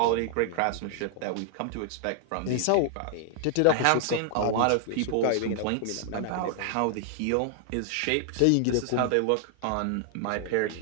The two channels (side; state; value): both; different; correlation 0.00